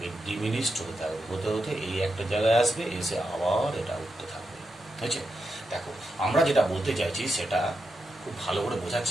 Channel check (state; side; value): normal; both; correlation 0.86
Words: ডিমিনিশড হতে থাকবে, হতে হতে এই একটা জায়গায় আসবে, এসে আবার এটা উঠতে থাকবে। বুঝছে? দেখো, আমরা যেটা বলতে চাইছি সেটা খুব ভালো করে বোঝার